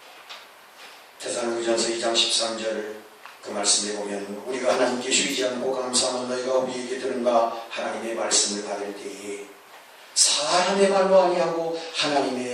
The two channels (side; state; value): both; identical; correlation 1.00